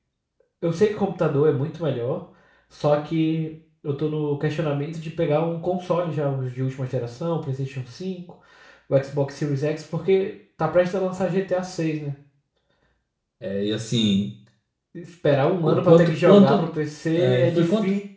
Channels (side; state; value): both; identical; correlation 1.00